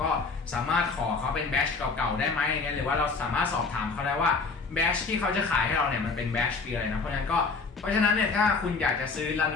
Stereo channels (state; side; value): quieter; right; 4.4 dB